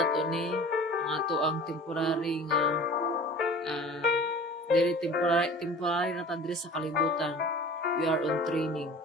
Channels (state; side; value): normal; both; correlation 0.42